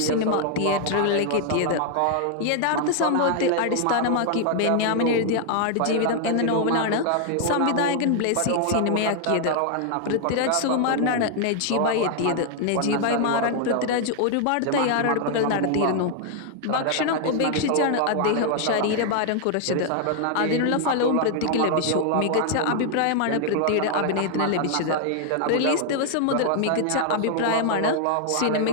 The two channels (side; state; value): both; different; correlation 0.00